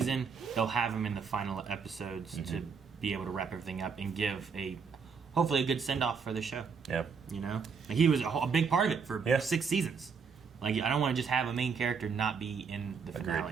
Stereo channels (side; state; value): left; quieter; 5.7 dB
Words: They'll have him in the final episodes to be able to wrap everything up and give hopefully a good send-off for the show. Yeah. You know? Like, he was a big part of it for 6 seasons. Like, I don't want to just have a main character not be in the